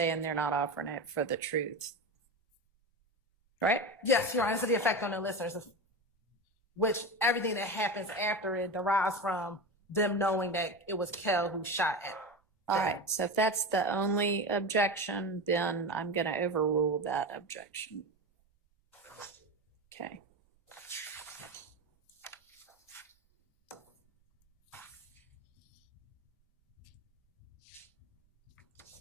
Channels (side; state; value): both; normal; correlation 0.23